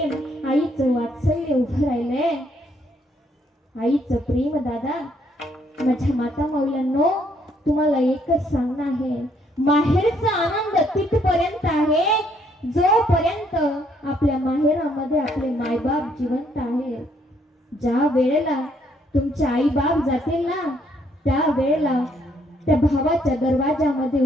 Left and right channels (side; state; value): both; normal; correlation 0.69